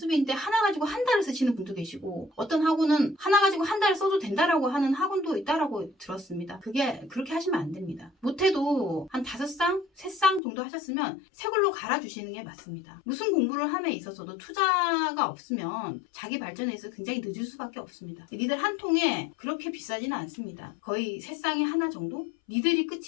하나 가지고 한 달을 쓰시는 분도 계시고, 어떤 학원은 하나 가지고 한 달을 써도 된다라고 하는 학원도 있다라고 들었습니다. 그게 그렇게 하시면 안 됩니다. 못해도 한 5쌍, 3쌍 정도 하셨으면 새 걸로 갈아주시는 게 맞습니다. 무슨 공부를 함에 있어서도 투자가 없으면 자기 발전에 있어서 굉장히 늦을 수밖에 없습니다. 니들 한 통에 그렇게 비싸지는 않습니다. 거의 3쌍에 하나 정도? 니들이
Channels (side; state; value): right; drops out; at 10.4 s